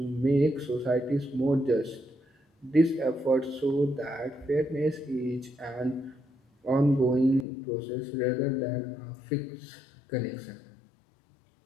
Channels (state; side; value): drops out; right; at 7.5 s